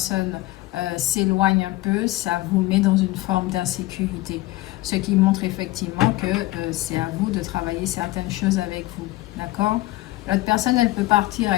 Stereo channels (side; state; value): right; quieter; 18.6 dB